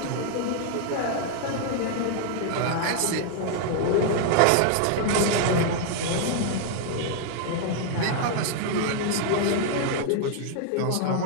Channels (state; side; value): different; both; correlation 0.00